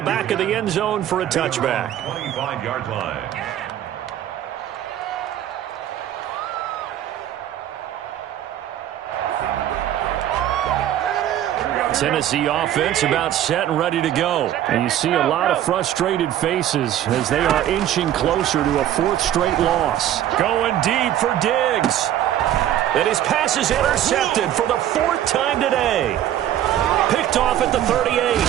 back of the end zone for a touchback. 25-yard line. Tennessee offense about set and ready to go. And you see a lot of frustrated faces as they are inching closer to a fourth straight loss. Going deep for Diggs. And his pass is intercepted for the fourth time today. Picked off at the 38.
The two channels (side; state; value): left; quieter; 11.7 dB